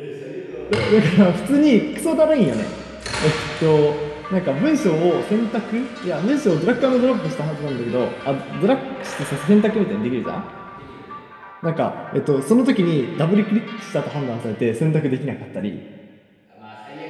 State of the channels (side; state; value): both; identical; correlation 1.00